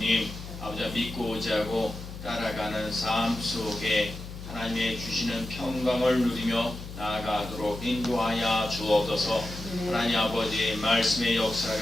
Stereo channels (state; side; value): noise; left; hum, 11 dB below the sound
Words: 아버지 믿고 의지하고 따라가는 삶 속에 하나님의 주시는 평강을 누리며 나아가도록 인도하여 주옵소서. 하나님 아버지, 말씀의